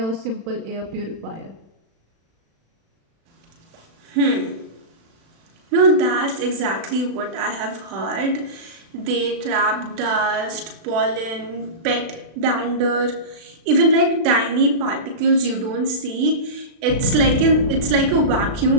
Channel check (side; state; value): left; late; 36 ms